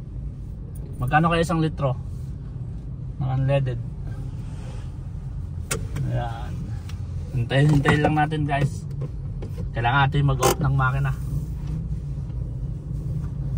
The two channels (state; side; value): identical; both; correlation 1.00